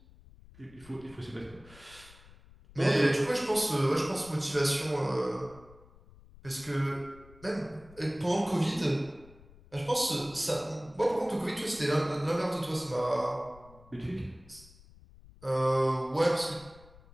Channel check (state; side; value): noise; left; rumble, 23 dB below the sound